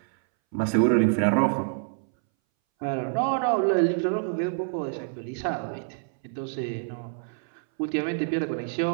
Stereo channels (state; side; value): silent; left; 60 dB below the other